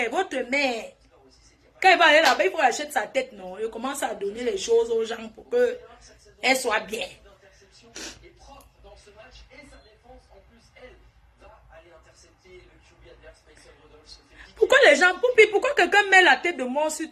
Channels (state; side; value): identical; both; correlation 1.00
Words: votre mère. Quand elle va aller là-bas, il faut acheter sa tête, non? Il commence à donner les choses aux gens pour qu'elle soit bien. Pourquoi les gens, pourquoi quelqu'un met la tête de mort sur...